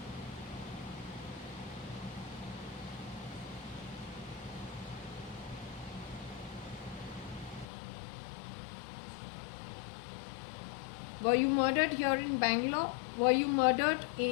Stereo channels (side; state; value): right; drops out; at 7.7 s